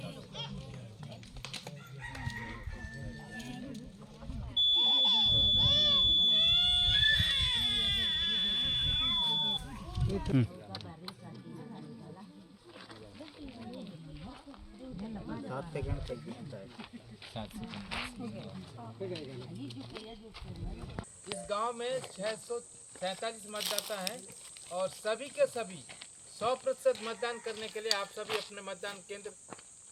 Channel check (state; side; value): identical; both; correlation 1.00